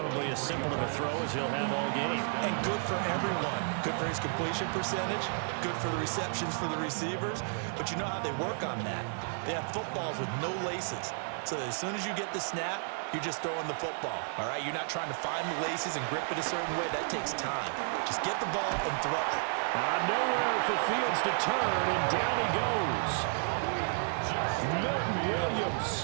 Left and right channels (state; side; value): silent; left; 56 dB below the other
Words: as simple of a throw as he'll have all game. And good for everyone. Good for his completion percentage. Good for the receptions for the receivers. But you know how they work on that. They have footballs with no laces. So that as soon as you get the snap, you're just throwing the football, all right? You're not trying to find the laces and grip it a certain way. That takes time. Just get the ball and throw it. Nowhere for Fields to turn, and down he goes. Milton